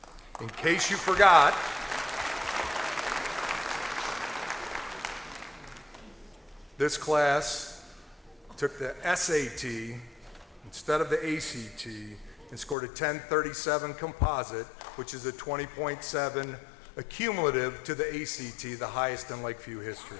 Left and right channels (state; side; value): drops out; right; at 12.8 s